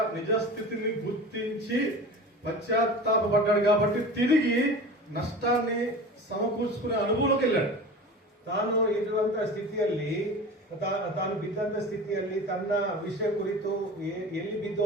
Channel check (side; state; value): both; normal; correlation 0.35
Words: నిజస్థితిని గుర్తించి పశ్చాత్తాపడ్డాడు కాబట్టి తిరిగి నష్టాన్ని సమకూర్చుకునే అనుభవంలోకి వెళ్ళాడు. ತಾನು ಇರುವಂತಹ ಸ್ಥಿತಿಯಲ್ಲಿ ತಾನು ಬಿದ್ದಂತ ಸ್ಥಿತಿಯಲ್ಲಿ ತನ್ನ ವಿಷಯ ಕುರಿತು ಎಲ್ಲಿ